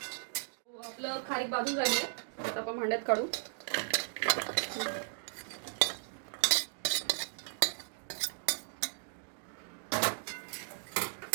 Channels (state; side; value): silent; left; digital silence